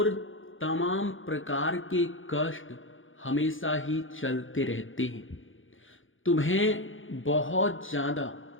तमाम प्रकार के कष्ट हमेशा ही चलते रहते हैं। तुम्हें बहुत ज़्यादा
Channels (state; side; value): late; right; 0.58 ms